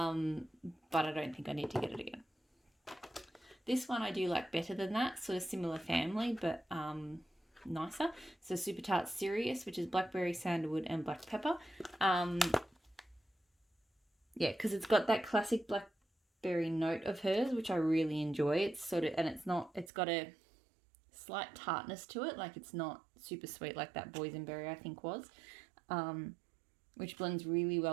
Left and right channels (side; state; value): left; drops out; at 19.9 s